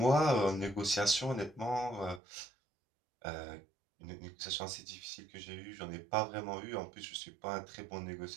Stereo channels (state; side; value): drops out; left; at 2.2 s